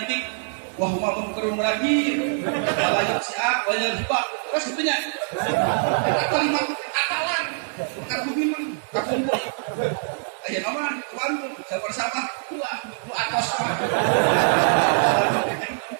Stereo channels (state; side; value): silent; left; digital silence